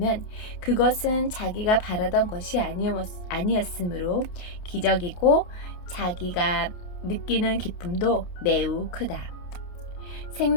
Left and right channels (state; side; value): late; right; 28 ms